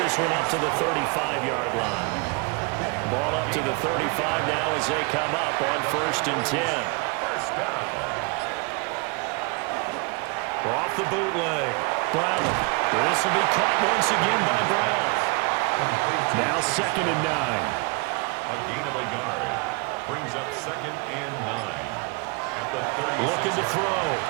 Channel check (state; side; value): quieter; left; 29.8 dB